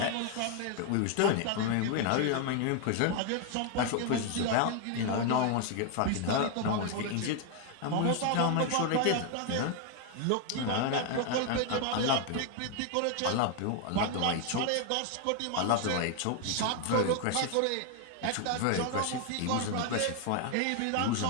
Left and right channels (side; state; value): both; different; correlation 0.01